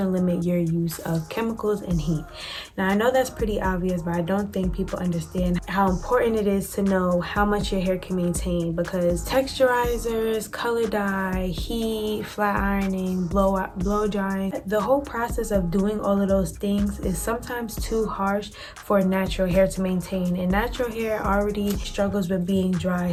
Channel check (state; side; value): identical; both; correlation 1.00